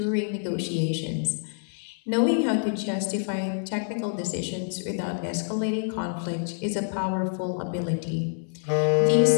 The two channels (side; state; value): right; silent; 60 dB below the other